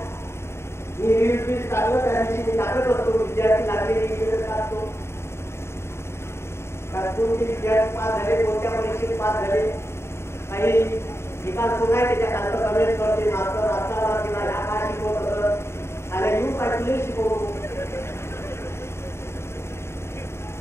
मी रील टाकलं त्या दिवशी मी टाकत असतो, विद्यार्थी लागलेली टाकतो. कोणते विद्यार्थी पास झाले, कोणत्या परीक्षेत पास झाले, काही निकाल कोण आहे त्याच्या कमेंट करते. मास्तर असताना किंवा ह्या काय शिकवत असत आणि येऊन पाहिजे शिकवतो.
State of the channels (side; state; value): right; late; 0.13 ms